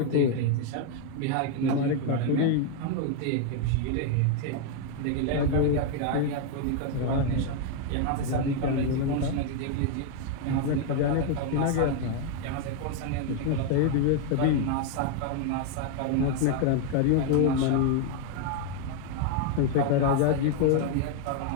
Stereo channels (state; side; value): different; both; correlation 0.01